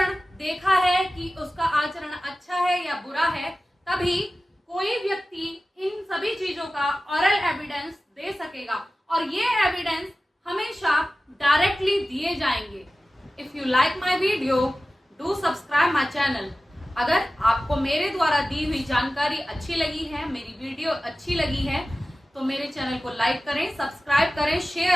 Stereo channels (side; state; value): both; normal; correlation 0.95